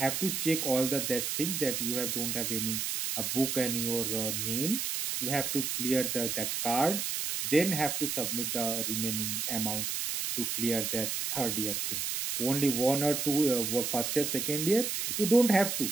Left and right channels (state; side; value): noise; right; hiss, 1 dB below the sound